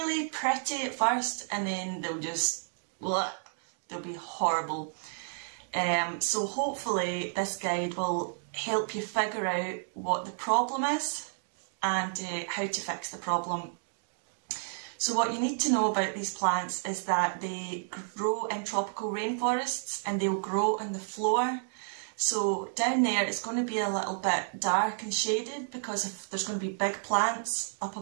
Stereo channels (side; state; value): left; silent; digital silence